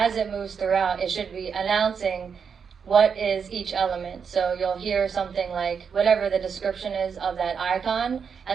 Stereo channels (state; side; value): quieter; left; 6.5 dB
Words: it moves throughout, it should be announcing what is each element. So you'll hear something like whatever the description is of that icon,